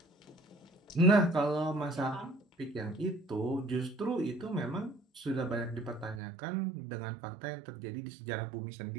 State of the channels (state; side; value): drops out; left; at 6.2 s